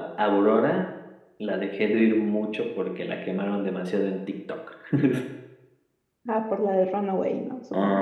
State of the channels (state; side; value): identical; both; correlation 1.00